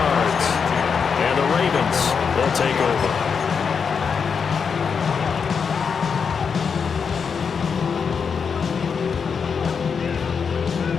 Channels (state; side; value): quieter; right; 6.1 dB